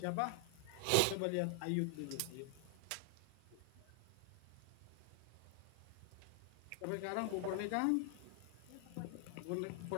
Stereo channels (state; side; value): different; both; correlation 0.00